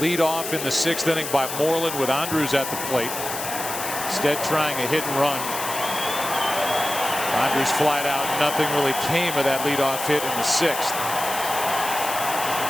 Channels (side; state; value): left; noise; hiss, 6 dB below the sound